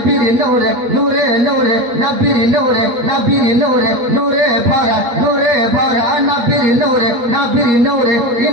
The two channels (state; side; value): late; left; 8.5 ms